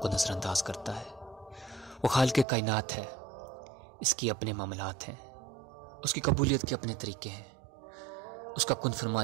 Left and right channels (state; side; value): drops out; left; at 2.5 s